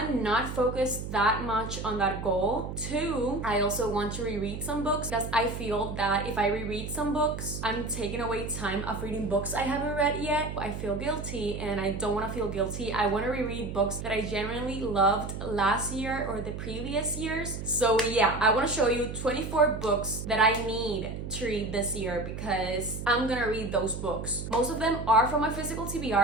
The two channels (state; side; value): noise; right; hum, 7 dB below the sound